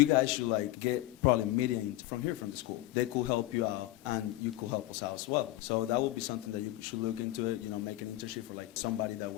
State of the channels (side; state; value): right; quieter; 16.5 dB